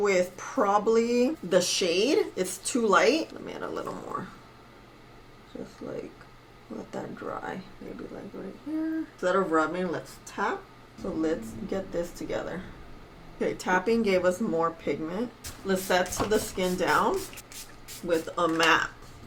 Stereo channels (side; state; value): both; identical; correlation 1.00